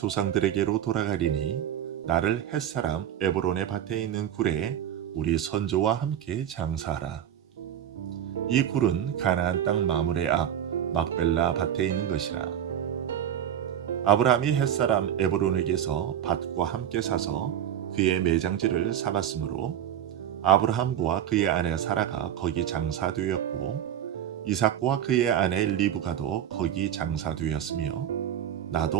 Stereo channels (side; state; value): left; quieter; 10.1 dB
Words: 돌아가리니 나를 헷사람 에브론의 밭에 있는 굴에 우리 선조와 함께 장사하라. 이 굴은 가나안 땅 마므레 앞 막벨라 밭에 있는 것이라. 아브라함이 헷사람 에브론에게서 밭과 함께 사서 그의 매장지를 삼았으므로 아브라함과 그의 아내 사라가 거기 장사되었고 이삭과 그의 아내 리브가도 거기 장사되었으며